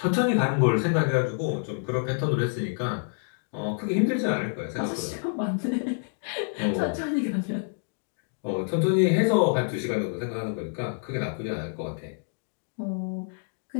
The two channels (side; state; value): right; silent; digital silence